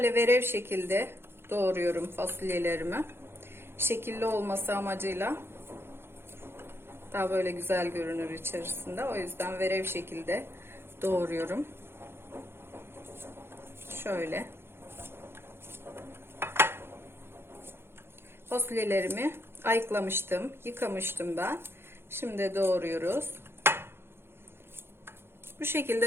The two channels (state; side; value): late; left; 0.11 ms